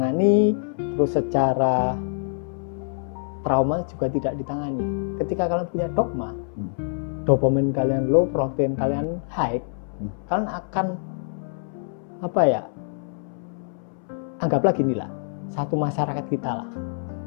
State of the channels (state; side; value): silent; right; 62 dB below the other